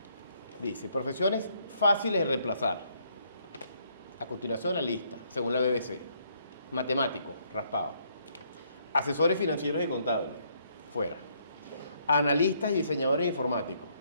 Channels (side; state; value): both; inverted; correlation -0.70